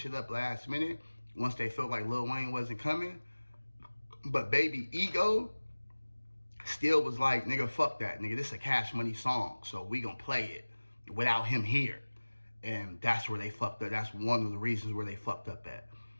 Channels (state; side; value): inverted; both; correlation -1.00